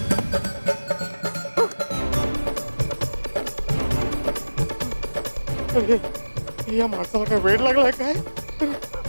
ये माणसाला काय वेळ लागलाय काय?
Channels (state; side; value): inverted; both; correlation -1.00